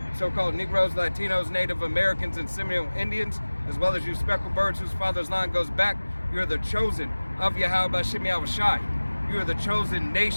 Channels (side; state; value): both; inverted; correlation -1.00